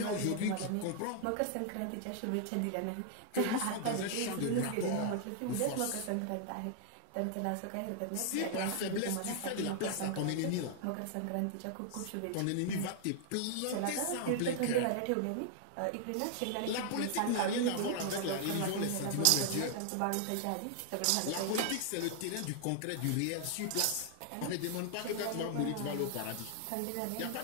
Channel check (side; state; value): both; different; correlation 0.00